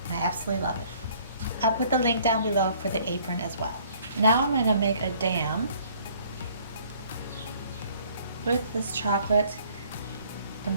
And I absolutely love it. I'll put the link down below for the apron as well. Now I'm going to make a dam with this chocolate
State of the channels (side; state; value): both; inverted; correlation -0.59